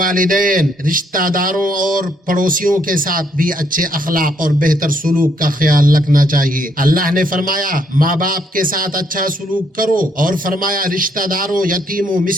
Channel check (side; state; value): both; normal; correlation 0.71